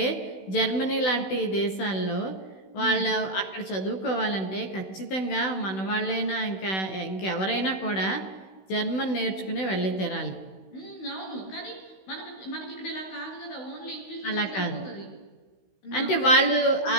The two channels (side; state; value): right; late; 16 ms